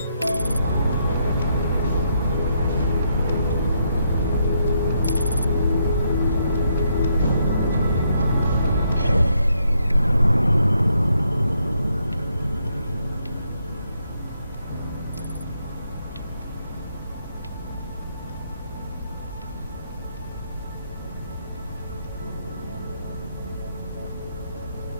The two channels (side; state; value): both; inverted; correlation -0.76